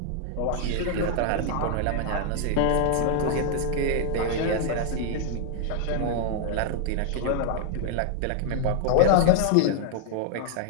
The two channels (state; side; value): different; both; correlation 0.00